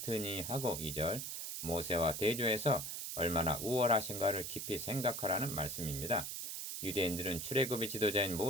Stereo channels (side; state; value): right; noise; hiss, 5 dB below the sound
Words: 하고 2절 모세와 대조해서 얼마나 우월하신가를 깊이 생각하라는 말씀입니다. 유대인들은 출애굽의 지도자인